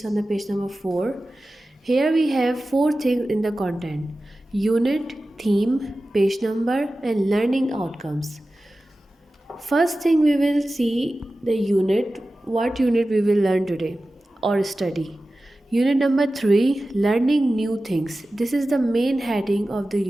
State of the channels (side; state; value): both; normal; correlation 0.95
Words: on the page number 4. Here we have four things in the content: unit, theme, page number, and learning outcomes. First thing we will see the unit, what unit we will learn today or study. Unit number 3, learning new things. This is the main heading of the